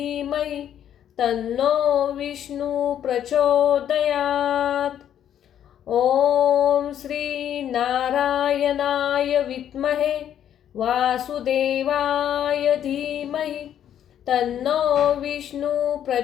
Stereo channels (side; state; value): right; quieter; 10.1 dB